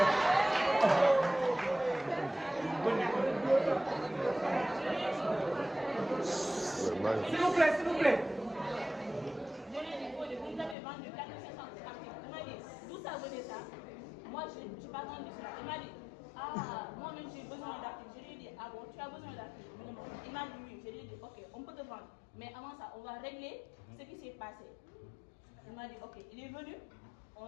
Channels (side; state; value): right; drops out; at 10.8 s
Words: S'il vous plaît, s'il vous plaît. Vous nous avez vendu 4 500 articles. Il m'a dit, d'où ça venait ça? Moi, je n'ai pas vendu cela. Il m'a dit, moi-même j'ai besoin d'articles. Je lui ai dit, ah bon, tu as besoin d'articles? Il m'a dit oui. Je lui ai dit, ok, on peut te vendre. Mais avant ça, on va régler ce qui s'est passé. Il m'a dit, ok, il est venu, on